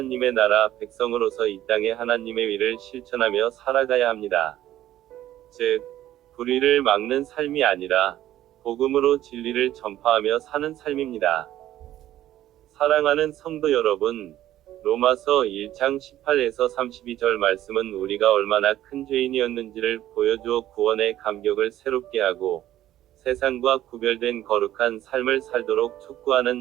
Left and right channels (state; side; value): quieter; left; 13.1 dB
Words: 나라 백성으로서 이 땅에 하나님의 위를 실천하며 살아가야 합니다. 즉, 불의를 막는 삶이 아니라 복음으로 진리를 전파하며 사는 삶입니다. 사랑하는 성도 여러분, 로마서 1장 18에서 32절 말씀은 우리가 얼마나 큰 죄인이었는지를 보여주어 구원의 감격을 새롭게 하고 세상과 구별된 거룩한 삶을 살도록